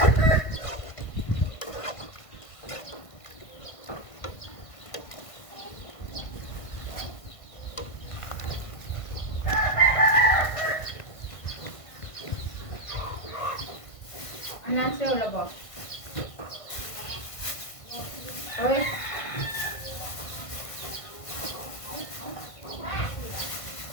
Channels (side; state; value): right; late; 1.5 ms